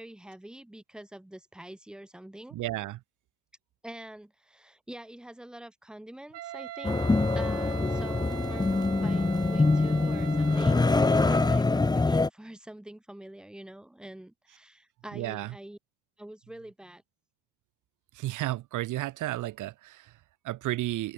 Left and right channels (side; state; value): both; normal; correlation 0.78